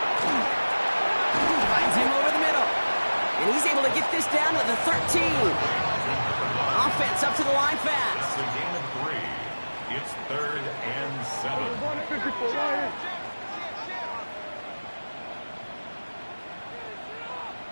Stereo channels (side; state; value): both; inverted; correlation -1.00